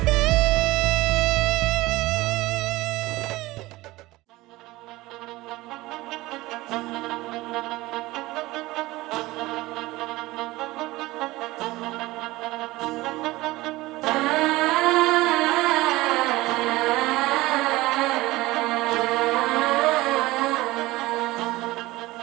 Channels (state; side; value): quieter; left; 19.3 dB